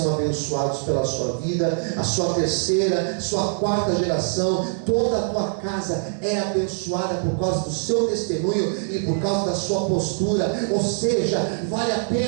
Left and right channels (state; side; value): silent; left; 61 dB below the other